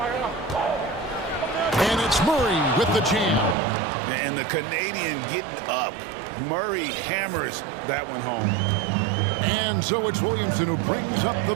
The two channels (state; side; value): drops out; left; at 3.6 s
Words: And it's Murray with the jam. And the Canadian getting up. Murray hammers that one home. And so it's Williamson who brings up the